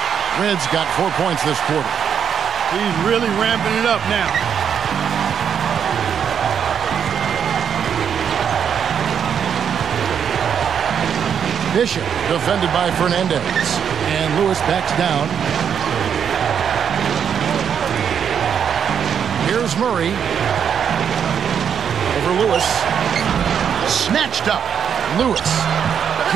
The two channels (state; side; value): quieter; left; 7.8 dB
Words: Red's got 4 points this quarter. He's really ramping it up now. Bishop defended by Fernandez. And Lewis backs down. Here's Murray. Over Lewis. Snatched up. Lewis